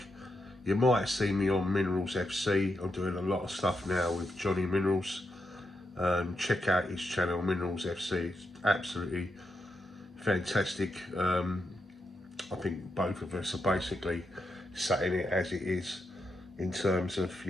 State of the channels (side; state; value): both; normal; correlation 0.84